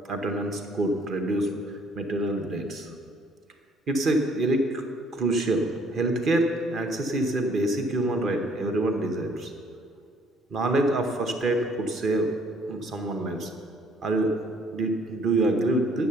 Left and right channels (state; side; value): normal; both; correlation 0.62